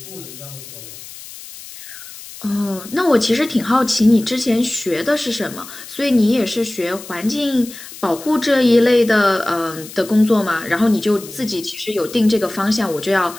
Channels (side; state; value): left; noise; hiss, 15 dB below the sound